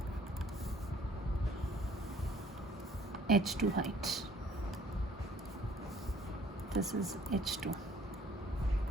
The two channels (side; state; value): both; normal; correlation 0.57